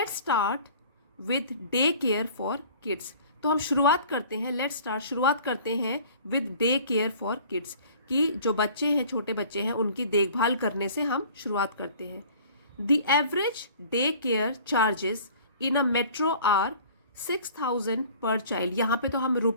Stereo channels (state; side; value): inverted; both; correlation -0.49